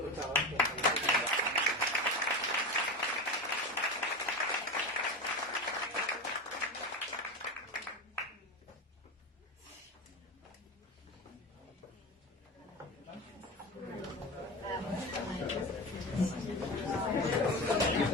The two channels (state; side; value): normal; both; correlation 0.23